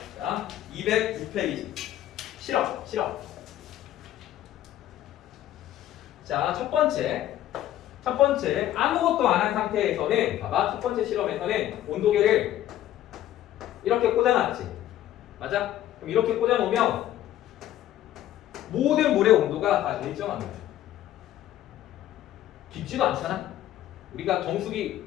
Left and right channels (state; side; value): quieter; right; 12.9 dB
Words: 자, 206페이지. 실험. 자, 첫 번째 아무것도 안 한 상태에서는 봐봐. 첫 번째 실험에서는 온도계를 이렇게 꽂아놨지. 맞아? 그럼 이렇게 꽂아놓으면 모든 물의 온도가 다 일정합니다. 깊지도 않잖아. 우리가 정수기